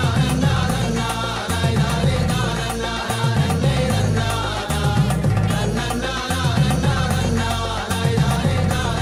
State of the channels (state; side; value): identical; both; correlation 1.00